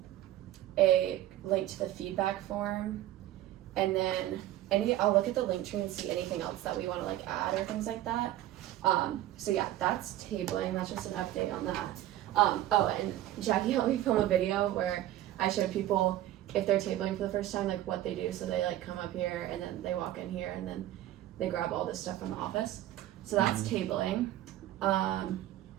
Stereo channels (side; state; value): left; quieter; 13.8 dB